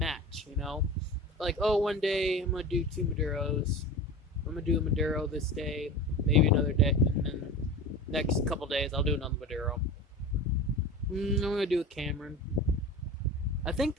you know? Like, oh, one day I'm going to do 2 Maduros. I'm going to do a Maduro this day, maybe another day, and then next couple days I'll do another Maduro. I'm going to do a Cameron. I think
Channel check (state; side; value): normal; both; correlation 0.32